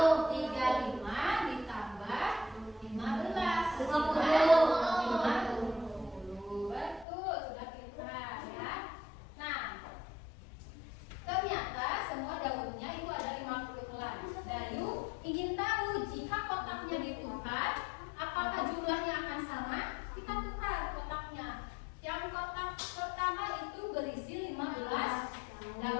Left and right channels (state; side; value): drops out; right; at 7.1 s